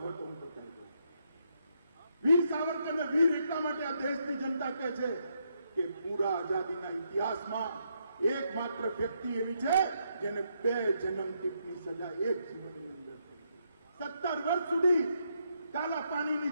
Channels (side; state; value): both; inverted; correlation -0.77